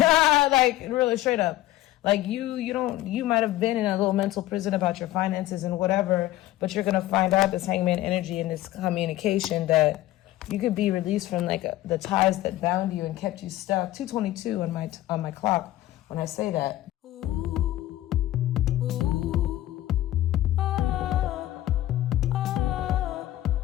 really straight up. Like you might have been in a little mental prison about your finances and whatever, but you're going to find out this Hangman energy and this communication that you could be released from like the ties that bound you and kept you stuck. 222 on my clock when I say that.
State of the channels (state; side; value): quieter; right; 15.3 dB